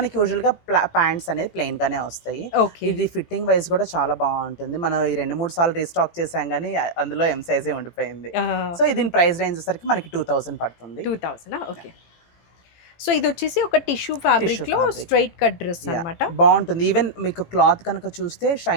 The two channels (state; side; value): late; right; 18 ms